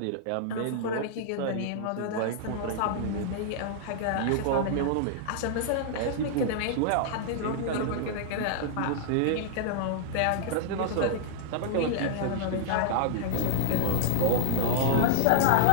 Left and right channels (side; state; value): both; different; correlation -0.01